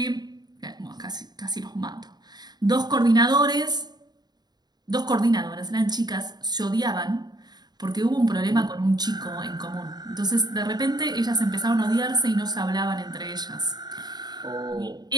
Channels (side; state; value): left; late; 0.20 ms